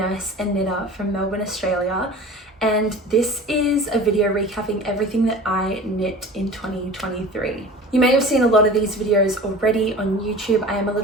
and knitter from Melbourne, Australia. And this is a video recapping everything that I knit in 2023. You may have seen a lot of these videos already on YouTube. I am a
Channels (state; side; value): normal; both; correlation 0.39